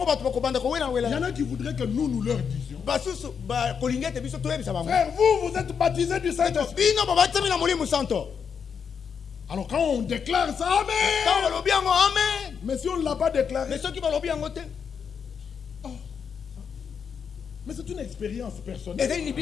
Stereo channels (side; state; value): right; quieter; 6.7 dB